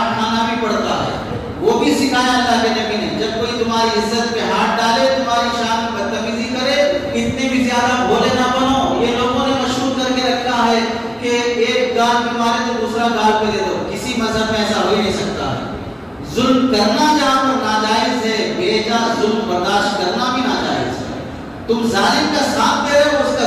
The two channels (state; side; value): identical; both; correlation 1.00